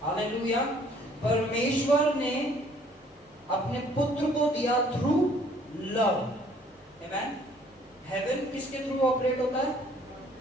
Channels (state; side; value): normal; both; correlation 0.59